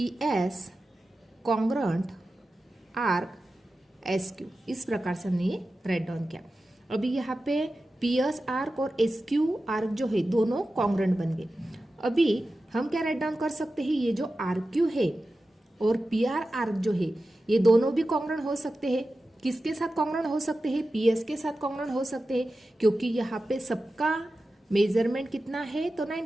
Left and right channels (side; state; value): both; normal; correlation 0.93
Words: S congruent arc S Q, इस प्रकार से हमने ये राइट डाउन किया। अभी यहाँ पे पी एस आर्क और एस क्यू आर्क जो है दोनों कॉन्ग्रुएंट बन गए। अभी हम क्या राइट डाउन कर सकते हैं, ये जो आर्क क्यू है और पी आर आर्क जो है ये दोनों भी कॉन्ग्रुएंट हो सकते हैं। किसके साथ कॉन्ग्रुएंट हो सकते हैं, पी एस के साथ कॉन्ग्रुएंट हो सकते हैं, क्योंकि यहाँ पे सबका मेजरमेंट कितना है तो